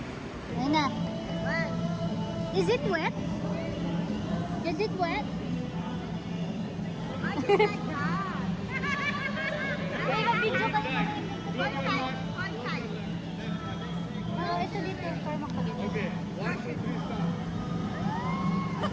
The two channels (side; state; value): both; identical; correlation 1.00